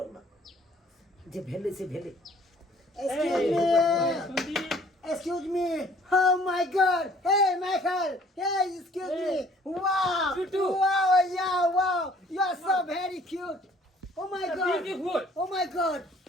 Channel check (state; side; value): normal; both; correlation 0.56